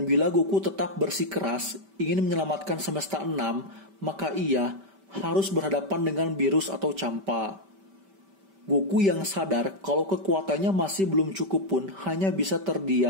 bila Goku tetap bersikeras ingin menyelamatkan semesta 6, maka ia harus berhadapan dengan Beerus atau Champa. Goku yang sadar kalau kekuatannya masih belum cukup pun hanya bisa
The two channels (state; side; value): late; left; 5.1 ms